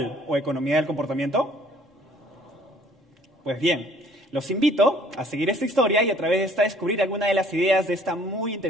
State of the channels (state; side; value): normal; both; correlation 0.57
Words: o economía del comportamiento? Pues bien, los invito a seguir esta historia y a través de esta descubrir algunas de las ideas de esta muy